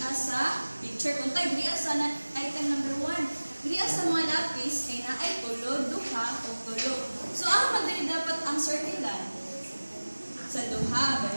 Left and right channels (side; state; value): both; inverted; correlation -1.00